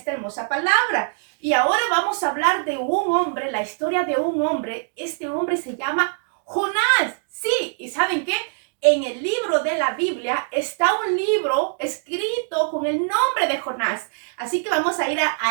hermosa palabra. Y ahora vamos a hablar de un hombre, la historia de un hombre. Este hombre se llama Jonás. Sí, ¿y saben qué? En el libro de la Biblia está un libro escrito con el nombre de Jonás. Así que vamos a ir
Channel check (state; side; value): silent; left; 64 dB below the other